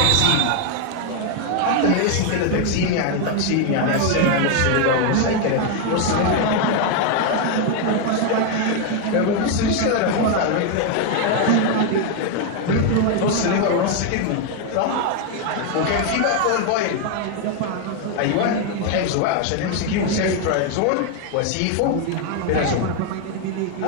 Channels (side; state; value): both; different; correlation 0.01